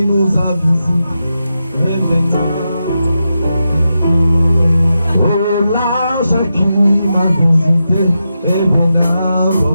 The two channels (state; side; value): inverted; both; correlation -0.88